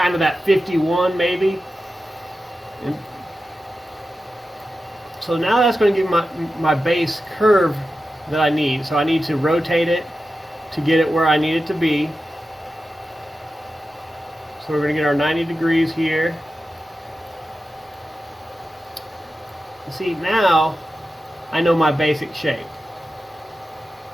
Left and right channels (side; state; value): both; normal; correlation 0.92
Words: of that 51 maybe. And so now that's going to give my base curve that I need. So I need to rotate it to get it where I need it to be. So we're going to get our 90 degrees here. See, now I know my basic shape.